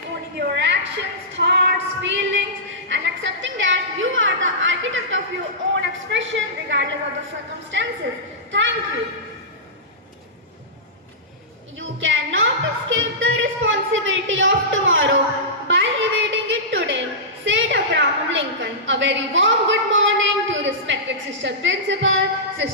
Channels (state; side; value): normal; both; correlation -0.17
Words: owning your actions, thoughts, feelings, and accepting that you are the architect of your own expression regardless of the circumstances. Thank you. You cannot escape the responsibility of tomorrow by evading it today, said Abraham Lincoln. A very warm good morning to respected Sister Principal,